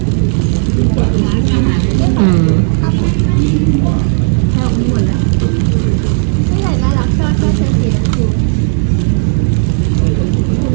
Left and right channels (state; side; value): silent; left; 66 dB below the other